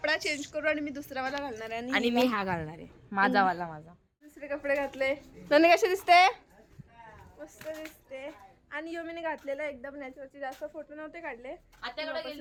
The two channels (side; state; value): both; identical; correlation 1.00